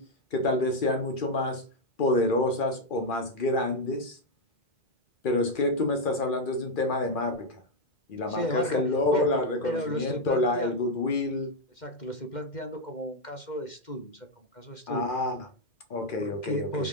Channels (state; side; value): late; right; 2.4 ms